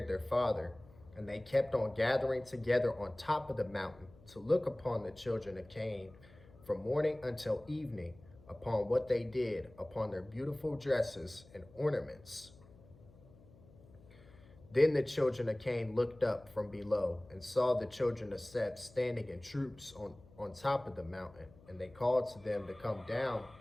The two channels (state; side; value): noise; left; hum, 23 dB below the sound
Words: their father, and they kept on gathering together on top of the mountain to look upon the children of Cain from morning until evening, upon what they did, upon their beautiful dresses and ornaments. Then the children of Cain looked up from below and saw the children of Seth standing in troops on top of the mountain, and they called to them to come down.